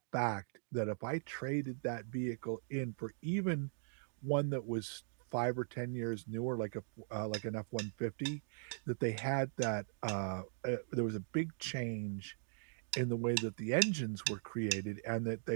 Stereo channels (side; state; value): left; silent; digital silence